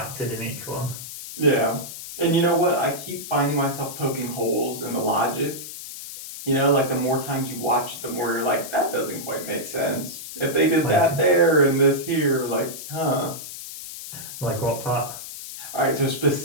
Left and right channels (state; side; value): noise; left; hiss, 11 dB below the sound